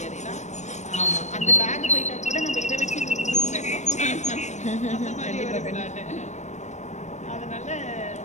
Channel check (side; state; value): right; late; 0.34 ms